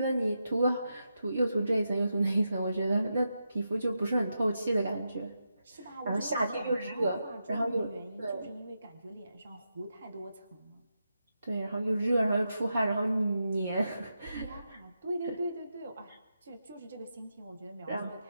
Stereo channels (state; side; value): inverted; both; correlation -0.87